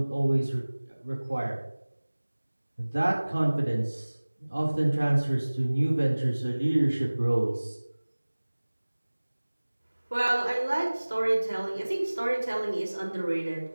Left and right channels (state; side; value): inverted; both; correlation -1.00